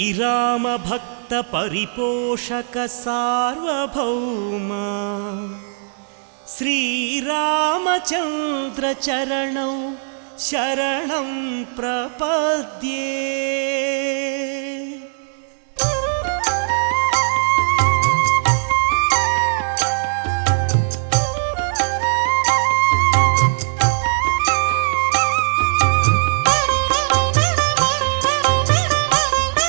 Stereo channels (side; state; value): left; silent; digital silence